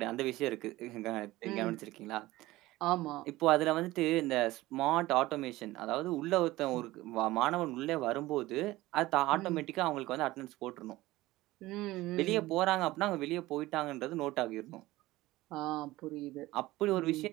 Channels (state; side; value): quieter; left; 18.1 dB